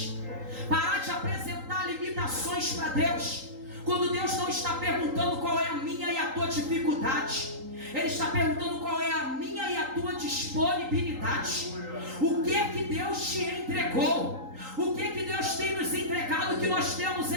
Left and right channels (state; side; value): late; left; 3.8 ms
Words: parar de apresentar limitações para Deus, quando Deus não está perguntando qual é a minha e a tua dificuldade. Ele está perguntando qual é a minha e a tua disponibilidade. O que é que Deus te entregou? O que é que Deus tem nos entregado que nós temos